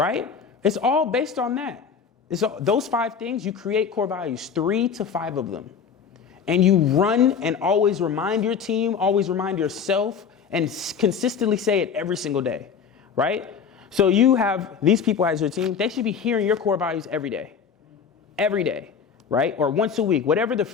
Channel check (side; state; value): right; quieter; 6.7 dB